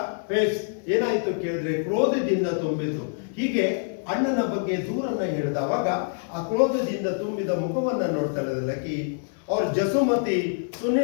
ಫೇಸ್ ಏನಾಯ್ತು ಕೇಳಿದ್ರೆ ಕ್ರೋಧದಿಂದ ತುಂಬಿತು. ಹೀಗೆ ಅಣ್ಣನ ಬಗ್ಗೆ ದೂರನ್ನ ಹೇಳಿದವಾಗ ಆ ಕ್ರೋಧದಿಂದ ತುಂಬಿದ ಮುಖವನ್ನ ನೋಡ್ತಾಳೆ ಲಕ್ಕಿ. ಅವ್ರ ಜಸುಮತಿ ಸುನಿ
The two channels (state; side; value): silent; right; digital silence